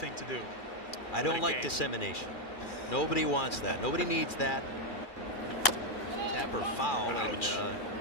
to do. I don't like dissemination. Nobody wants that. Nobody needs that. Tapper foul. Ouch. And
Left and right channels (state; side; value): late; right; 2.3 ms